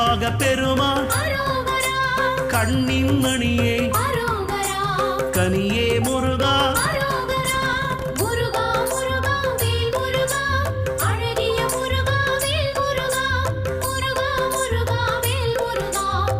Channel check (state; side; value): identical; both; correlation 1.00